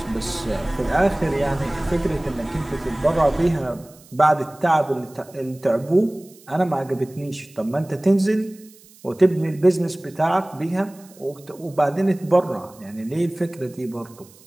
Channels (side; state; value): right; noise; hiss, 25 dB below the sound